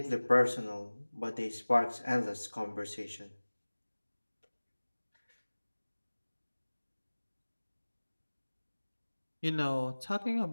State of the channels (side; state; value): both; inverted; correlation -1.00